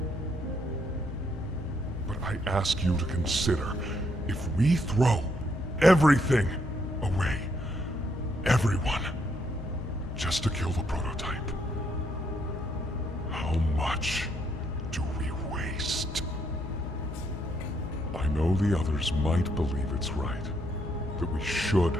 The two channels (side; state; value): both; normal; correlation 0.74